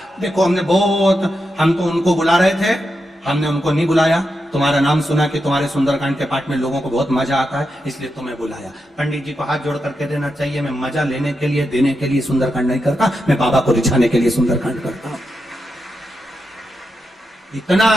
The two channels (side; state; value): both; normal; correlation 0.87